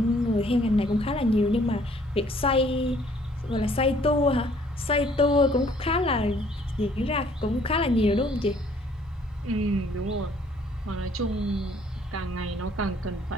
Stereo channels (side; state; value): both; normal; correlation 0.60